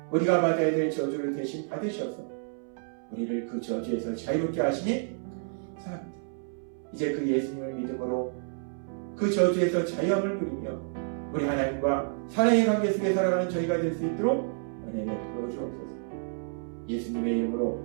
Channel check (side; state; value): left; silent; 58 dB below the other